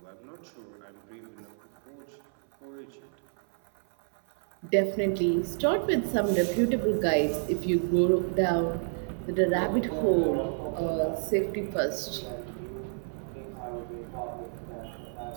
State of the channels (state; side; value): silent; left; 57 dB below the other